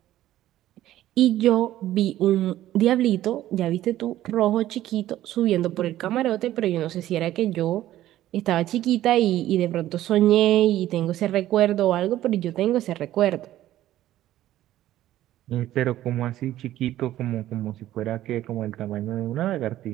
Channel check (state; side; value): quieter; left; 13.8 dB